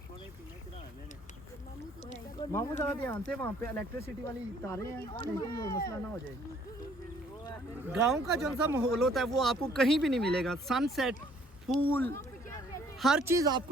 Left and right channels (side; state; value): both; normal; correlation 0.61